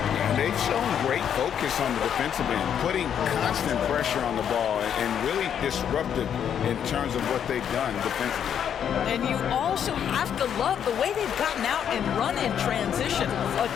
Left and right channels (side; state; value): right; quieter; 8.7 dB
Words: And they've shown great focus on the defensive end, putting constant pressure on the ball and really disruptive in terms of what they've done defensively. And you also have to love the way they've gotten out and run in transition. A